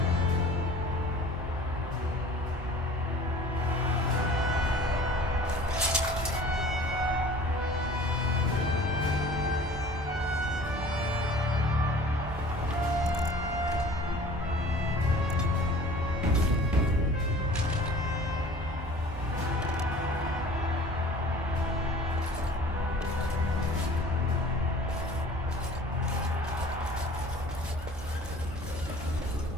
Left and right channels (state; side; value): normal; both; correlation 0.46